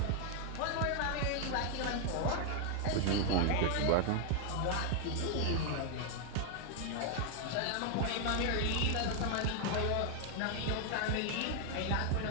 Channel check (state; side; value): different; both; correlation 0.00